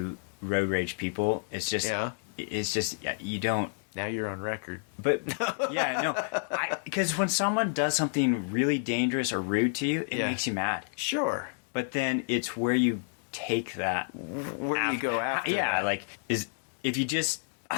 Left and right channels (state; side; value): silent; right; digital silence